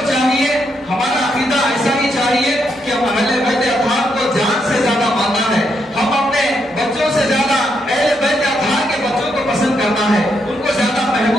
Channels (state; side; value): normal; both; correlation 0.78